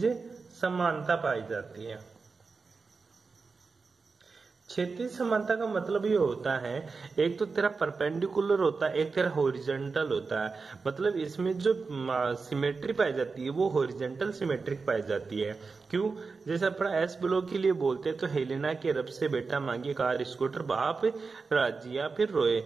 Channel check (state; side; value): quieter; left; 4.5 dB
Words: समानता पाई जाती है। क्षैतिज समानता का मतलब ये होता है, एक तो तेरा परपेंडिकुलर होता है, एक तेरा हॉरिजॉन्टल होता है। मतलब इसमें जो सिमेट्री पाई जाती है वो हॉरिजॉन्टल सिमेट्रिक पाई जाती है। क्यों? जैसे अपना एस ब्लॉक के लिए बोलते हैं तो हेलेना के रब से बेटा मांगे कार स्कूटर बाप राजी या फिर रोए,